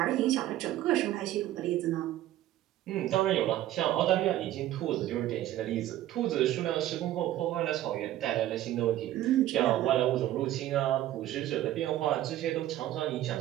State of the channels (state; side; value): quieter; left; 13.7 dB